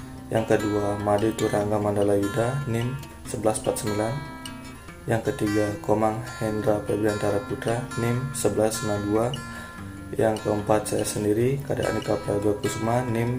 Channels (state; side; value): identical; both; correlation 1.00